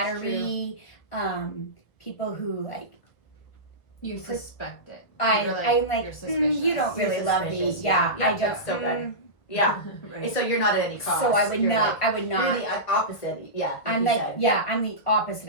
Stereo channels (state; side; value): late; right; 1.6 ms